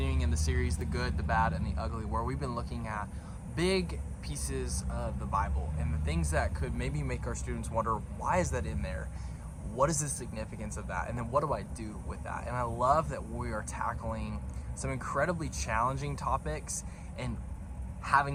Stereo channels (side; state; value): both; identical; correlation 1.00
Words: in the series, The Good, the Bad, and the Ugly, where we've been looking at big pieces of the Bible and the things that could maybe make our students wonder, why is that in there? What is the significance of that? And then what do I do with that? And I love that we are tackling some incredibly challenging topics and having